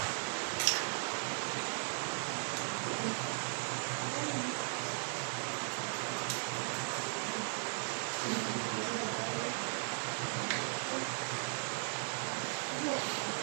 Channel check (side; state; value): left; silent; 53 dB below the other